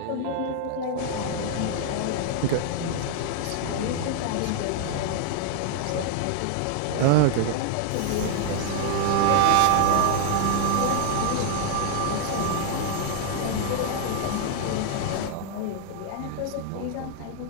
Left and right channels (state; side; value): different; both; correlation -0.01